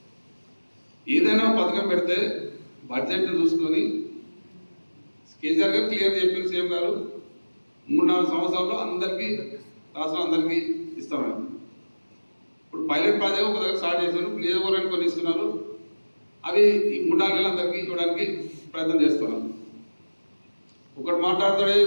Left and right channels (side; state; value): both; inverted; correlation -1.00